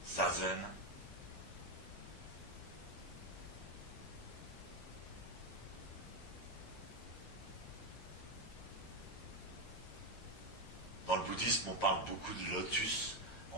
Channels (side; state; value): right; late; 8.5 ms